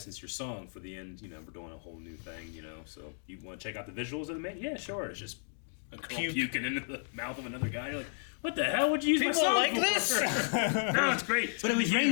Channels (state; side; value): silent; right; digital silence